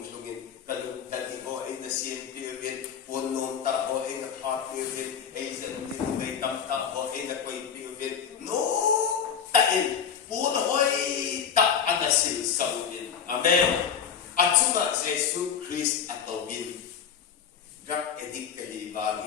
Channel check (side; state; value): right; quieter; 7.5 dB